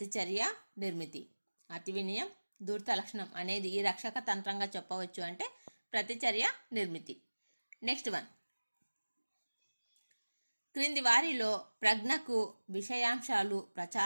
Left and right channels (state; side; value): inverted; both; correlation -1.00